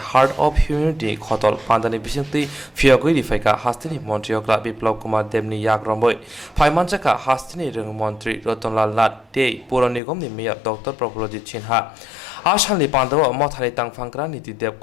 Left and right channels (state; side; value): drops out; right; at 10.0 s